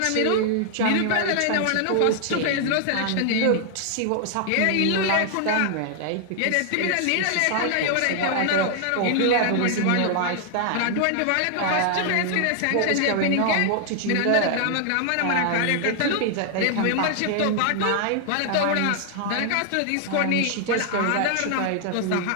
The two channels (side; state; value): both; different; correlation 0.00